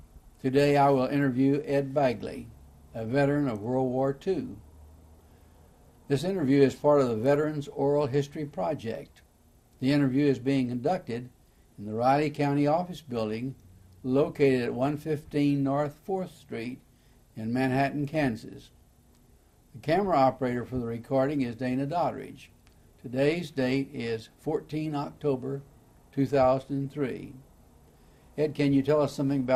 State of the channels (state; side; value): identical; both; correlation 1.00